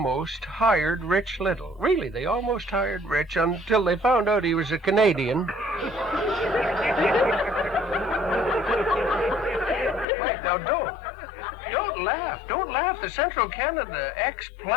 hired Rich Little. Really, they almost hired Rich until they found out he was a Canadian. Wait, now don't laugh. Don't laugh. The Central Canada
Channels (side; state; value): right; drops out; at 10.1 s